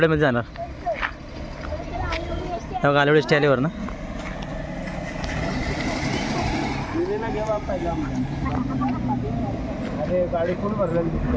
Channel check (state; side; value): identical; both; correlation 1.00